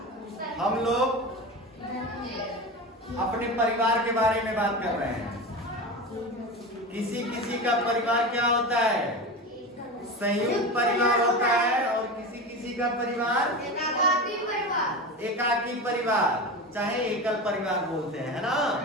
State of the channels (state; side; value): normal; both; correlation 0.25